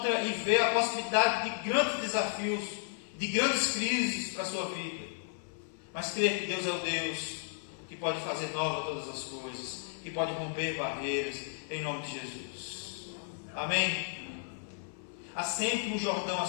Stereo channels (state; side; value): silent; right; 55 dB below the other